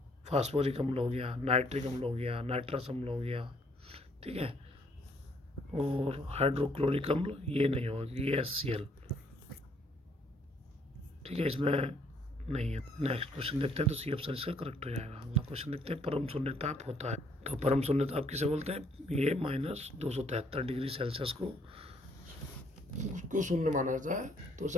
फास्फोरिक अम्ल हो गया, नाइट्रिक अम्ल हो गया, नाइट्रस अम्ल हो गया। ठीक है, और हाइड्रोक्लोरिक अम्ल ये नहीं होगी, ये HCl। ठीक है, इसमें नहीं है। नेक्स्ट क्वेश्चन देखते हैं, तो C ऑप्शन इसका करेक्ट हो जाएगा। अगला क्वेश्चन देखते हैं। परम शून्य ताप होता है, तो परम शून्य ताप किसे बोलते हैं? ये -273 डिग्री सेल्सियस को उसको शून्य माना जाता है, तो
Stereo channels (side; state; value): both; normal; correlation 0.65